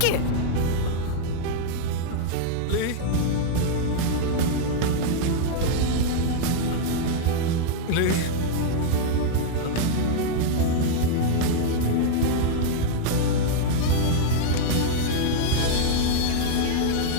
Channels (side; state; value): both; different; correlation -0.01